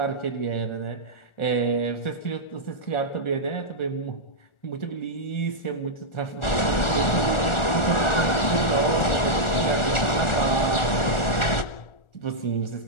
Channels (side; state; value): right; late; 1.4 ms